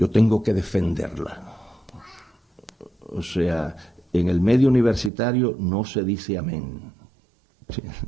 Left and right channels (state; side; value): drops out; left; at 5.1 s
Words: tengo que defenderla. O sea, en el medio universitario no se dice amén.